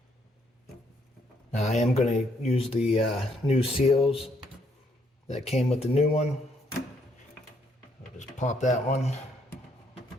Now I am going to use the new seals that came with the new one. I'll just pop that one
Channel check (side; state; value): both; normal; correlation 0.71